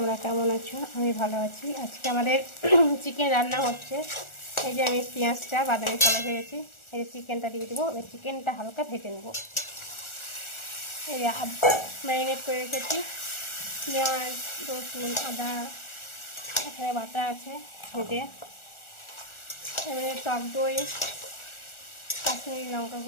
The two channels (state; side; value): late; right; 1.4 ms